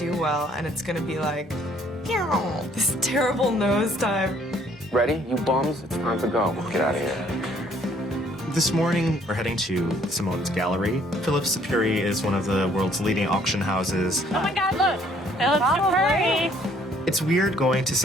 well and it's gonna be like, this terrible nosedive. Ready, you bums? It's time to go. Get out of here. This morning, we're heading to Simone's gallery. Phillips Sapiri is one of the world's leading auction houses. Oh my God, look! Phillips Sapiri! It's weird going to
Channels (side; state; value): both; normal; correlation 0.63